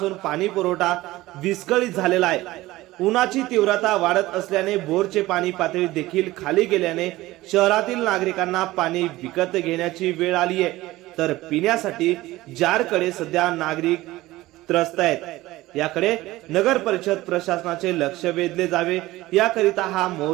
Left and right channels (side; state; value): left; quieter; 17.9 dB